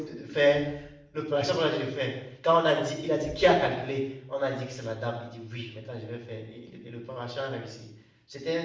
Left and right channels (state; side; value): identical; both; correlation 1.00